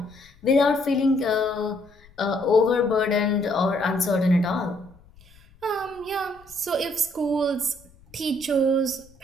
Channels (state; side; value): noise; left; rumble, 27 dB below the sound